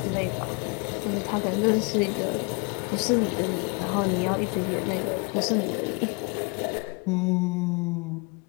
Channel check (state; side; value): quieter; right; 31.2 dB